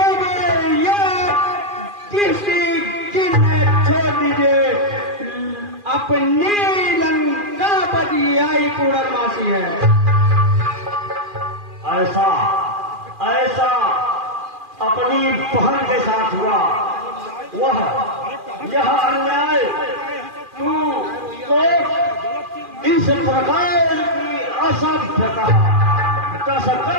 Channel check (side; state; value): left; late; 2.4 ms